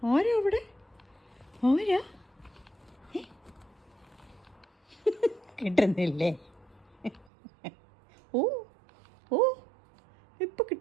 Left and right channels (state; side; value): drops out; left; at 7.2 s